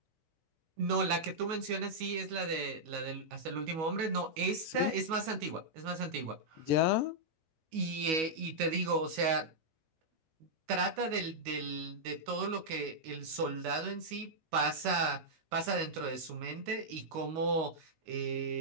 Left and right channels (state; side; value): late; left; 19 ms